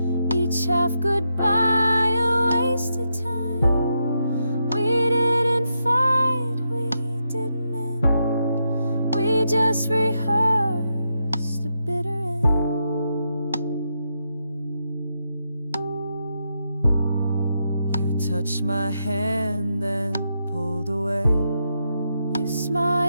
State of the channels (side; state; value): both; inverted; correlation -0.83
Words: each half goodbye, a wasted time. We didn't fight, we didn't end, we just rehearsed a bitter end. You touched my hand and pulled away. You